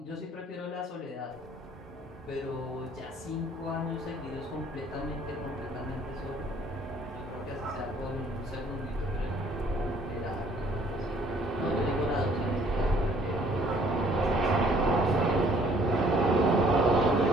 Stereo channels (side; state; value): both; normal; correlation 0.59